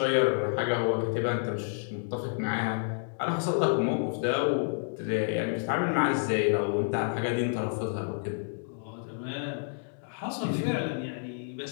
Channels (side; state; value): right; silent; digital silence